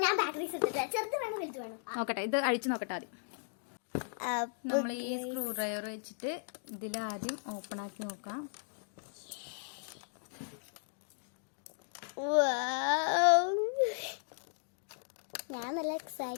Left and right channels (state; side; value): silent; right; digital silence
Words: ഞാൻ ബാറ്ററി ചെറുത് വേണം വലുത് വേണം നോക്കട്ടെ, ഇത് അഴിച്ചു നോക്കട്ടെ ആദ്യം. നമ്മൾ ഈ സ്ക്രൂ ഡ്രൈവർ വെച്ചിട്ട് ഇതിലാദ്യം ഓപ്പൺ ആക്കി നോക്കാം. ഞാൻ നല്ല